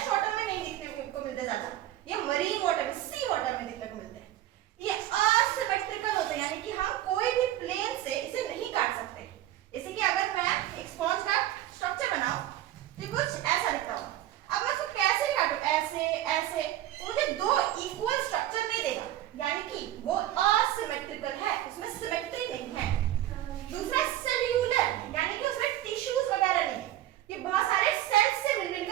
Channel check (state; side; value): quieter; left; 13.5 dB